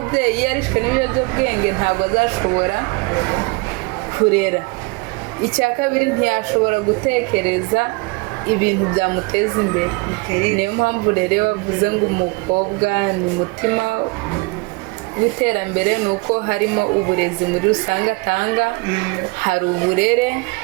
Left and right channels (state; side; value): quieter; left; 27.1 dB